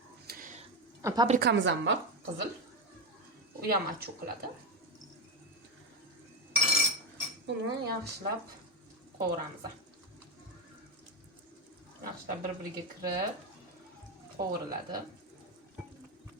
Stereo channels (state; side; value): normal; both; correlation 0.10